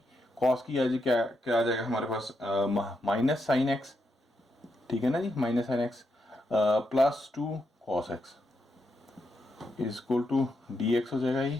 cos की आज क्या क्या आ जाएगा हमारे पास, माइनस साइन x, ठीक है ना जी, minus sine x plus 2 cos x is equal to dx हो जाएगा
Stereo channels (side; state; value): both; normal; correlation 0.82